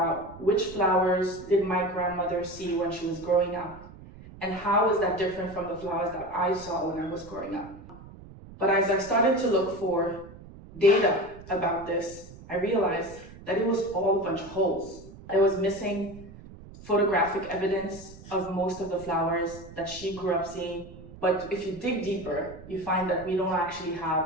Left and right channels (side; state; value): right; noise; rumble, 17 dB below the sound